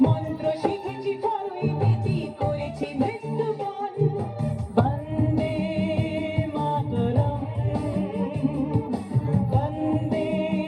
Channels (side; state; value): both; identical; correlation 1.00